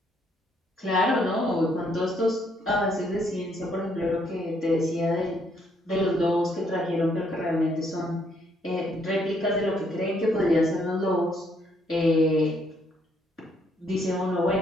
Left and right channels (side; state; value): both; normal; correlation 0.70